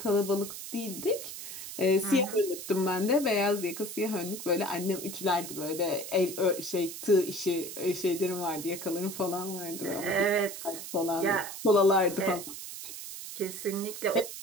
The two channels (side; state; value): right; noise; hiss, 9 dB below the sound